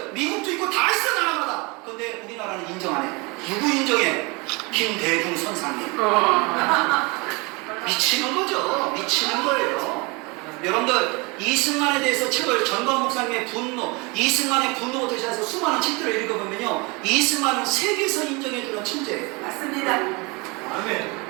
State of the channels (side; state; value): left; quieter; 27.7 dB